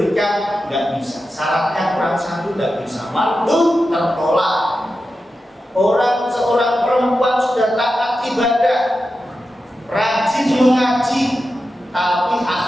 nggak bisa. Syaratnya kurang 1, nggak bisa. Mardud, tertolak. Seorang perempuan sudah taat ibadah, rajin mengaji, tapi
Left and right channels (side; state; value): both; normal; correlation 0.91